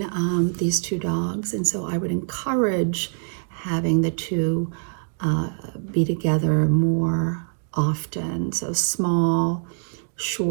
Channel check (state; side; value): silent; left; digital silence